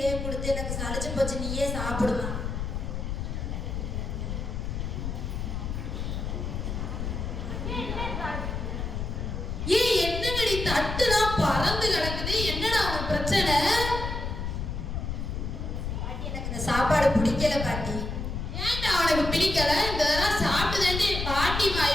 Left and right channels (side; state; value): left; noise; rumble, 4 dB below the sound